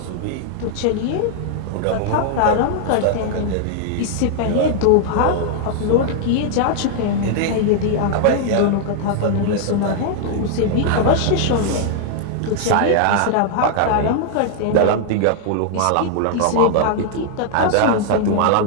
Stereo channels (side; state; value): both; different; correlation -0.01